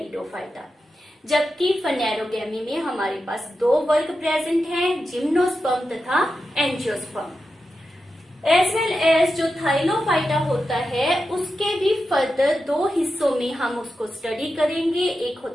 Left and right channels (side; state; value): both; normal; correlation 0.90